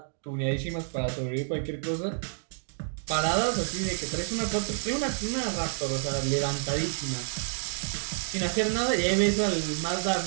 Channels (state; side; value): silent; left; 58 dB below the other